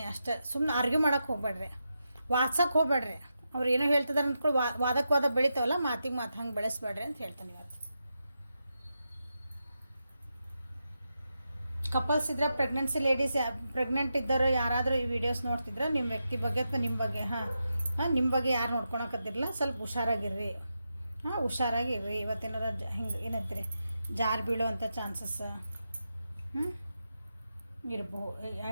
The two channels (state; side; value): inverted; both; correlation -0.87